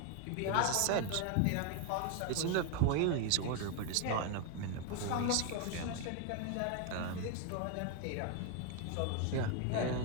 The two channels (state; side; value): different; both; correlation 0.01